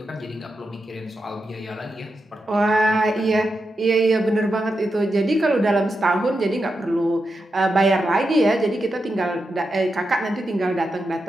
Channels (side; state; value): both; normal; correlation 0.87